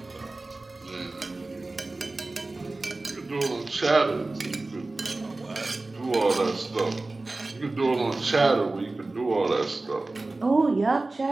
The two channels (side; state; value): left; quieter; 3.2 dB